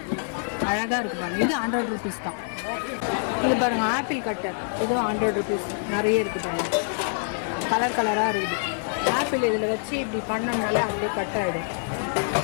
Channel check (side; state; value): right; silent; digital silence